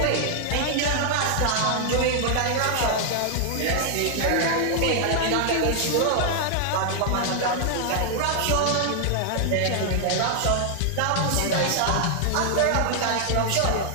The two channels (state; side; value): different; both; correlation 0.00